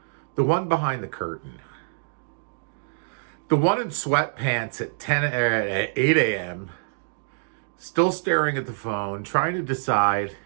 The one behind the curtain. The one in sweatpants at 8 a.m., still staring at the phone, trying to decide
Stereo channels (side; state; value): left; silent; digital silence